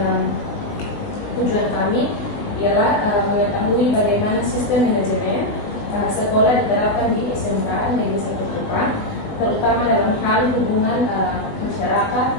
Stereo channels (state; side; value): late; right; 20 ms